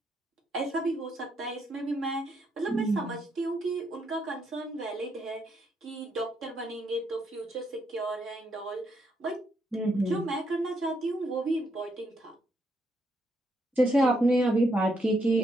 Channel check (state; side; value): normal; both; correlation 0.76